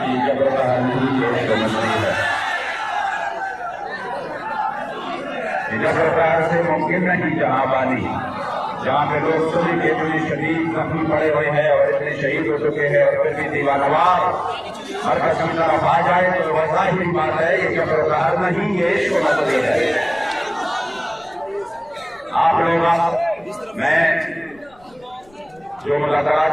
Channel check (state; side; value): noise; left; rumble, 29 dB below the sound